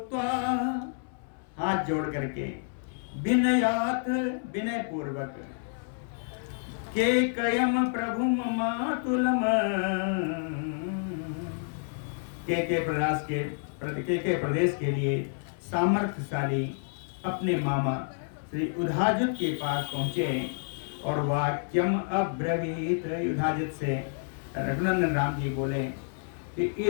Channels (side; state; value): right; silent; 58 dB below the other